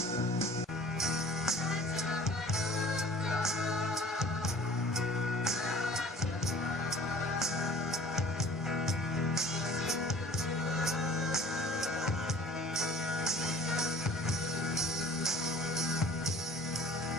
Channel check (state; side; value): normal; both; correlation 0.48